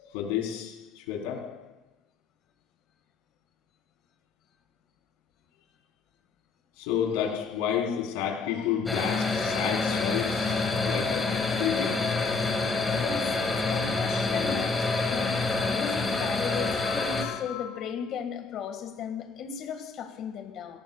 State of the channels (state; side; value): quieter; right; 4.5 dB